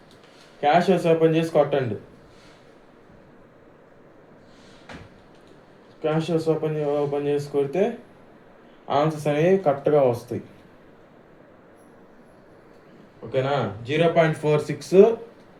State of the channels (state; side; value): identical; both; correlation 1.00